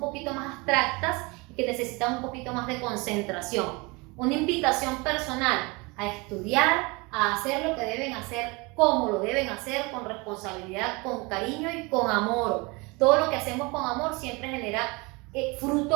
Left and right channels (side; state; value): left; quieter; 26.6 dB